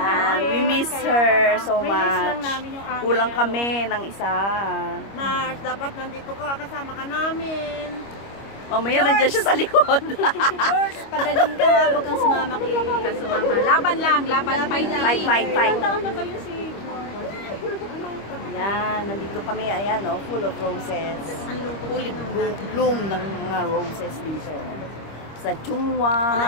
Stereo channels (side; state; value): right; late; 25 ms